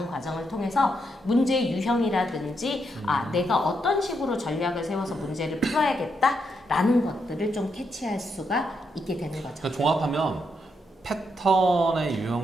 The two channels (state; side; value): normal; both; correlation 0.80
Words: 과정을 통해서 문제 유형이라든지 내가 어떤 식으로 전략을 세워서 문제를 풀어야겠다라는 것들을 좀 캐치할 수가 있게 되는 거죠. 그러니까 종합하면 패턴의